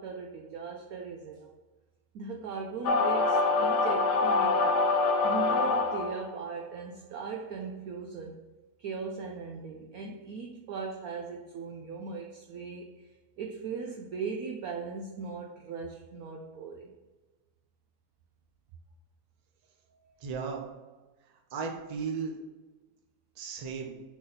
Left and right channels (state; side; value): normal; both; correlation 0.02